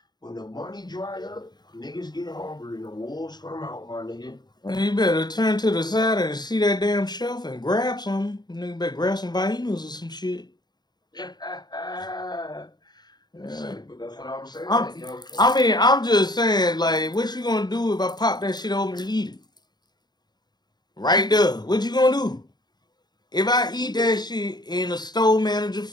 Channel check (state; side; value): late; right; 0.20 ms